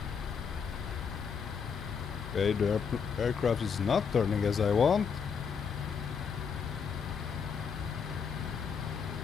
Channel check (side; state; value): right; quieter; 6.3 dB